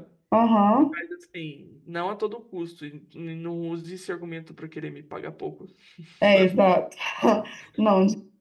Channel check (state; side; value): identical; both; correlation 1.00